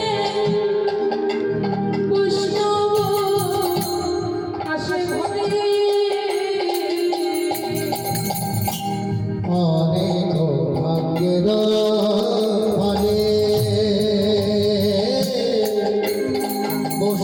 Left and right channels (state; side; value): identical; both; correlation 1.00